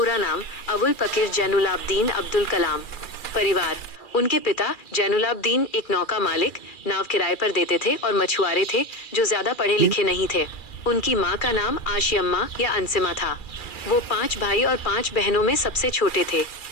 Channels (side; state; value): right; late; 2.4 ms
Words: नाम अबुल पकीर जैनुलाब्दीन अब्दुल कलाम। परिवार। उनके पिता जैनुलाब्दीन एक नौका मालिक, नाव किराए पर देते थे और मछुआरे थे जो ज्यादा पढ़े लिखे नहीं थे। उनकी माँ का नाम आशियम्मा या अंसिमा था। वो 5 भाई और 5 बहनों में सबसे छोटे थे।